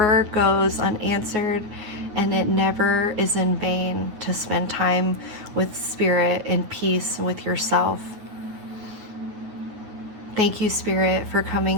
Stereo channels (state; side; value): late; left; 9.4 ms